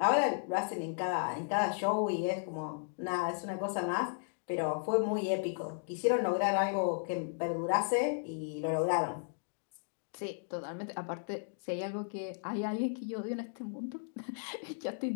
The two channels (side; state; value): right; silent; digital silence